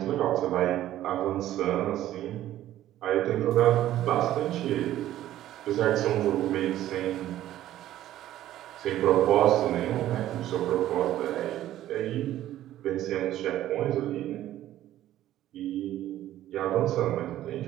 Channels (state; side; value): quieter; left; 13.2 dB